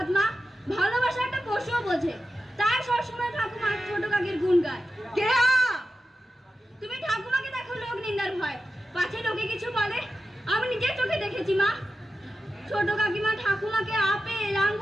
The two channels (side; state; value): both; normal; correlation 0.92